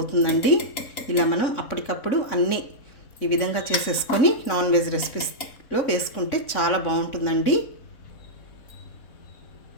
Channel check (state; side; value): late; right; 3.6 ms